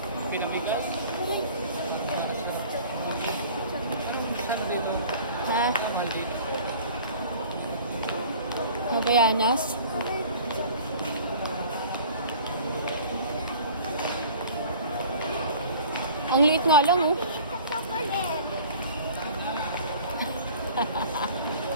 Pinamigas. Saan dito? Ha? Mahal dito. Mabayanas? Ang liit nga lang, oh.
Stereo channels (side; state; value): both; inverted; correlation -0.46